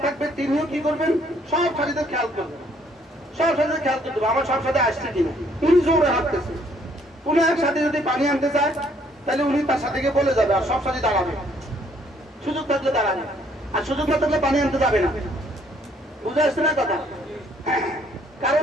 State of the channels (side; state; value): both; normal; correlation 0.65